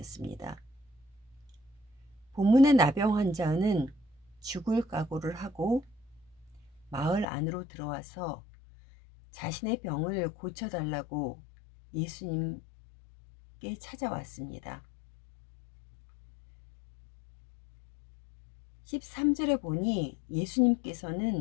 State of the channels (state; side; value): drops out; right; at 7.2 s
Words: 본문의 나병 환자는 죽을 각오를 하고 마을 안으로 들어와서 자신의 병을 고쳐달라고 예수님께 찾아왔습니다. 13절에 보니